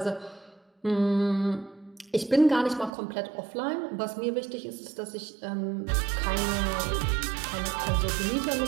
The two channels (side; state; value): left; drops out; at 2.9 s